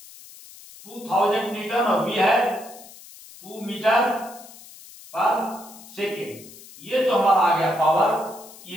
न्यूटन और V है 2 मीटर पर सेकेंड। ये जो हमारा आ गया पावर,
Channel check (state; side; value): noise; left; hiss, 19 dB below the sound